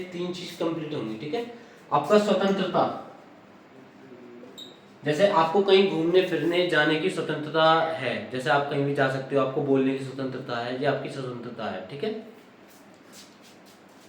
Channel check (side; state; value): both; identical; correlation 1.00